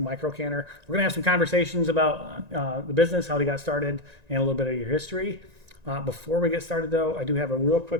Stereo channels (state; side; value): late; left; 1.9 ms